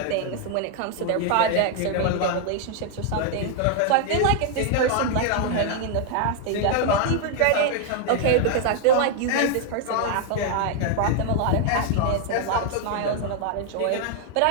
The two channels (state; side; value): different; both; correlation 0.00